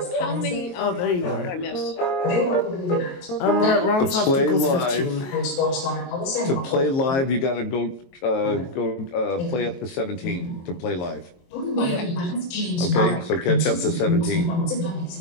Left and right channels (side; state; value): right; late; 22 ms